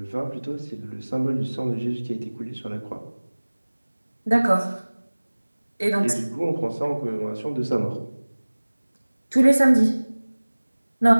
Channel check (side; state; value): both; inverted; correlation -1.00